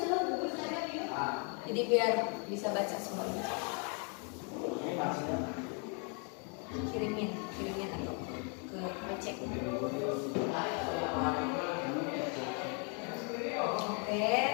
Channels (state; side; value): quieter; right; 37.5 dB